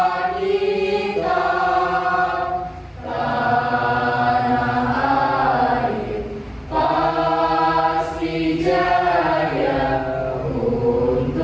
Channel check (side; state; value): both; identical; correlation 1.00